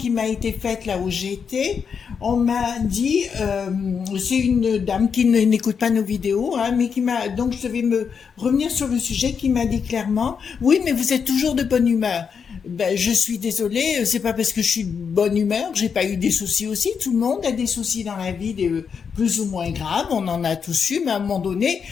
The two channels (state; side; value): quieter; right; 6.4 dB